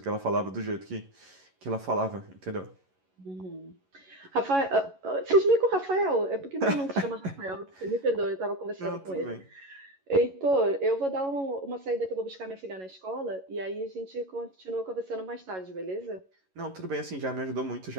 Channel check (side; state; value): left; late; 11 ms